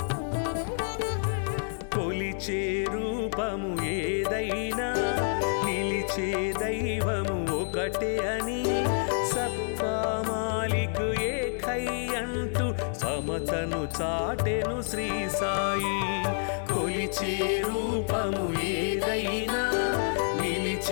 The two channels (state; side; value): silent; right; 59 dB below the other